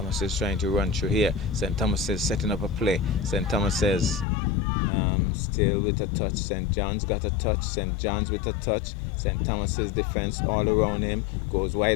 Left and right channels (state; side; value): drops out; right; at 4.2 s